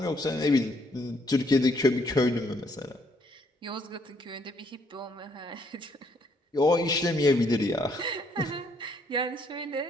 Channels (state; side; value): normal; both; correlation 0.69